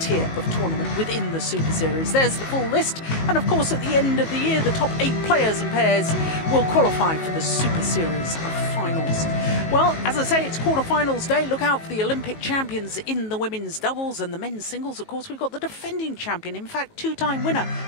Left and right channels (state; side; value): late; right; 19 ms